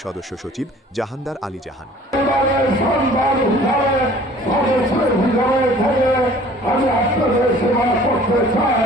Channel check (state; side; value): normal; both; correlation 0.51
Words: সদস্য সচিব জাহানদার আলী জাহান। আমি আপনাদের সেবা করতে চাই।